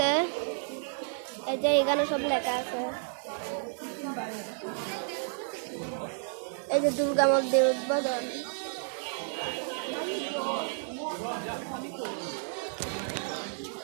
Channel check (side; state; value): left; silent; digital silence